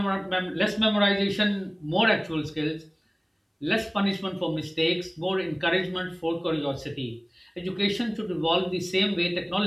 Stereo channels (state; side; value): identical; both; correlation 1.00